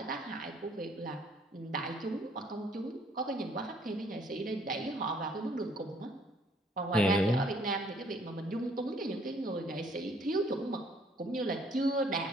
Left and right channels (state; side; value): normal; both; correlation 0.62